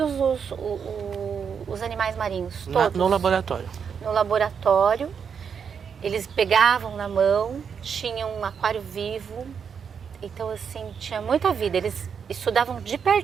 os animais marinhos, todos. No laboratório? No laboratório. Eles pegavam na mão, tinham um aquário vivo, então assim, tinha muita vida. Eles estudavam de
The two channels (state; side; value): quieter; left; 6.8 dB